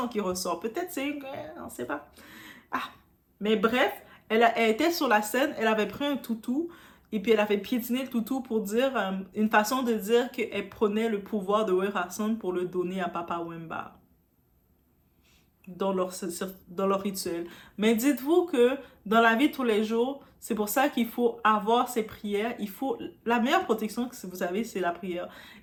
qui ressort. Peut-être c'est on ne sait pas. Ah, mais bref, elle était sur la scène, elle avait pris un toutou, et puis elle avait piétiné le toutou pour dire, une façon de dire qu'elle prenait le pouvoir de Werason pour le donner à Papa Wemba dans leur rituel. Mais dites-vous que dans la vie de tous les jours, c'est pour ça qu'il faut avoir ces prières. La meilleure protection que vous avez, c'est la prière.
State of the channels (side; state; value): both; identical; correlation 1.00